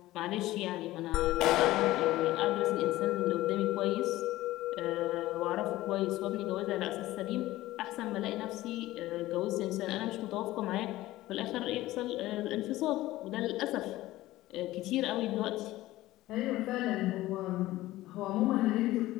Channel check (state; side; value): quieter; right; 16.7 dB